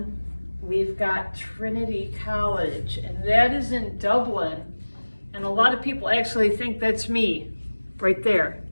we've got Trinity College, and that is in Dublin. And a lot of people actually think that's me right there.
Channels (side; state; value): both; inverted; correlation -1.00